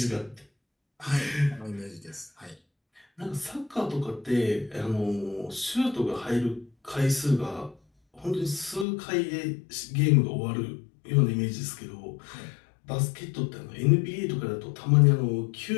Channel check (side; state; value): right; drops out; at 8.8 s